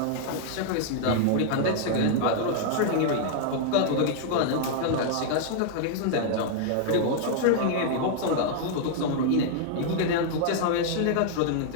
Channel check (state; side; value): different; both; correlation -0.01